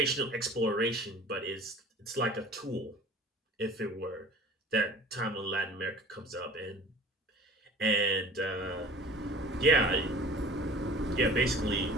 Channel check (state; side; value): normal; both; correlation 0.44